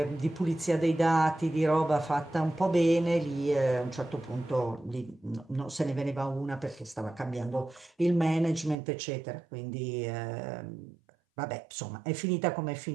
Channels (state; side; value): drops out; left; at 8.8 s